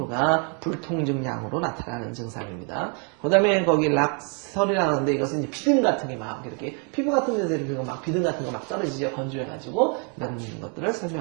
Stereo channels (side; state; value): left; quieter; 38.3 dB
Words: 불통증량으로 나타나는 증상입니다. 그 다음에 거기 락설이라고 하는데 이것은 이제 비듬 같은 게 막 이렇게 피부 같은 데서 이렇게 막 비듬 같은 거 막 떨어지죠. 건조해가지고 이런 것들을